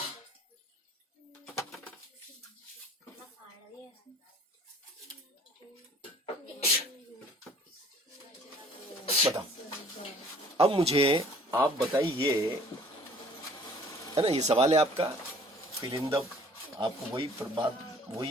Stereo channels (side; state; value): both; normal; correlation 0.53